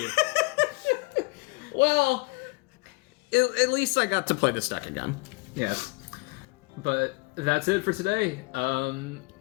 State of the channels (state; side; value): quieter; right; 27.0 dB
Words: Well, at least I got to play this deck again. Yes. But that's it for today.